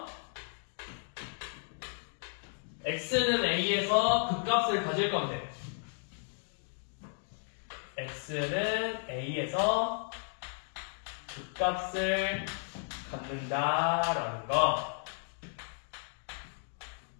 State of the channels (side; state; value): right; silent; 55 dB below the other